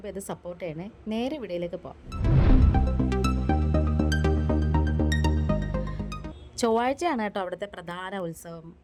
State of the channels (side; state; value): both; identical; correlation 1.00